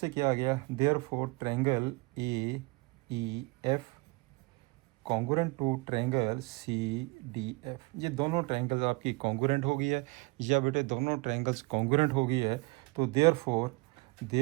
क्या आ गया? Therefore triangle A E F congruent to triangle C D F. ये दोनों ट्रायंगल्स आपकी कॉन्गुरेंट हो गई है, या बेटे दोनों ट्रायंगल्स कॉन्गुरेंट हो गई है, तो देयरफॉर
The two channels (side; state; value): left; quieter; 26.4 dB